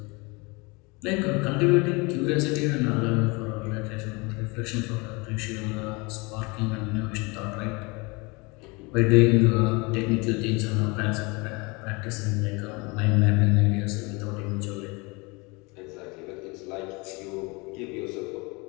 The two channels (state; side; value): quieter; right; 27.3 dB